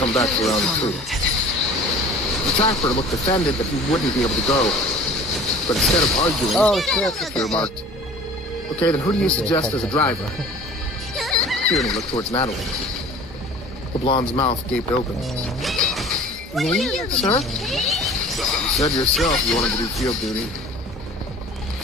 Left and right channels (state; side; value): normal; both; correlation 0.44